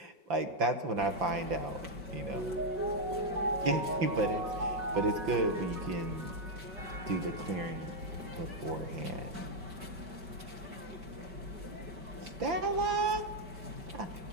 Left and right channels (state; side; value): late; left; 5.2 ms